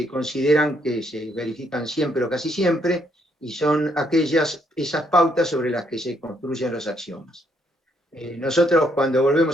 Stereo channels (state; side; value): normal; both; correlation 0.72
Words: consideran que se verifican siempre o casi siempre, y son esas pautas sobre las que se construyen los axiomas. Nosotros, cuando